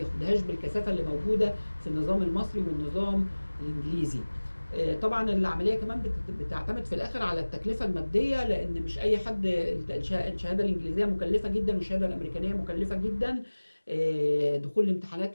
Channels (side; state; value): both; inverted; correlation -1.00